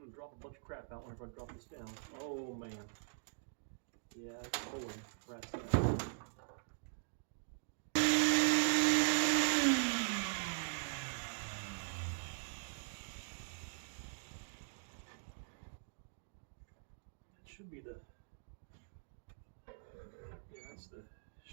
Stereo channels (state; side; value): silent; left; digital silence